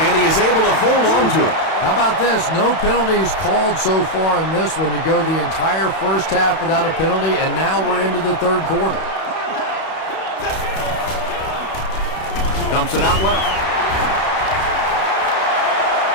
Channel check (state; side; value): late; right; 32 ms